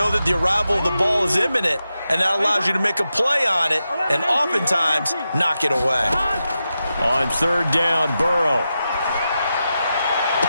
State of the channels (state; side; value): inverted; both; correlation -0.89